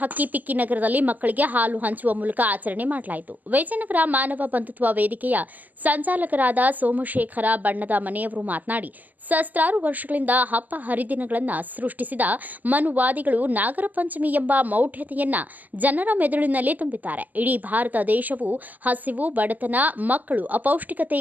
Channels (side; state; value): left; late; 0.082 ms